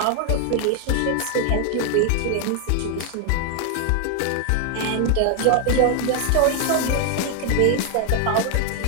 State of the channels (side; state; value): both; different; correlation 0.00